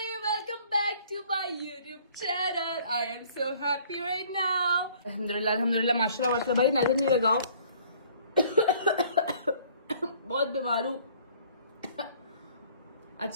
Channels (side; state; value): both; inverted; correlation -0.56